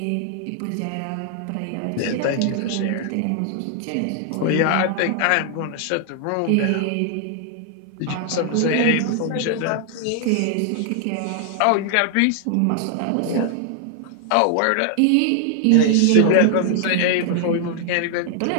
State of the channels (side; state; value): both; different; correlation 0.00